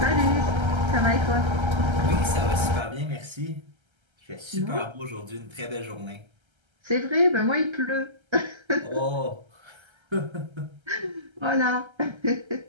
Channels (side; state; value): left; late; 1.3 ms